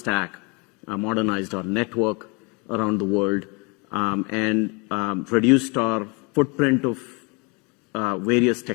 modernized our network around the world, and reduced our footprint of various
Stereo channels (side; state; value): right; quieter; 30.2 dB